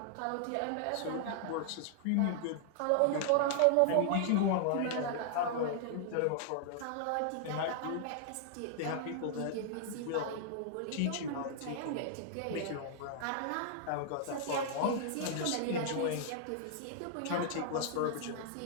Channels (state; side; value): different; both; correlation -0.01